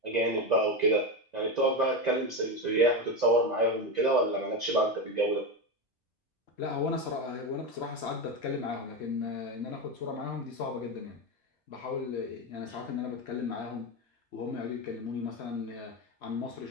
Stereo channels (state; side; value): normal; both; correlation 0.15